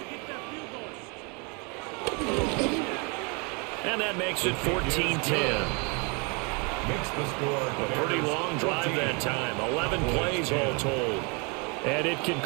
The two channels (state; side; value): quieter; left; 32.4 dB